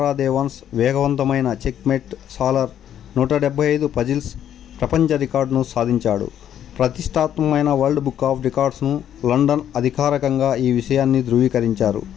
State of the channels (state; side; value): quieter; right; 10.2 dB